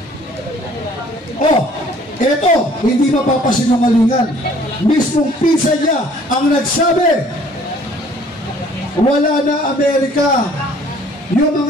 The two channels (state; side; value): normal; both; correlation 0.56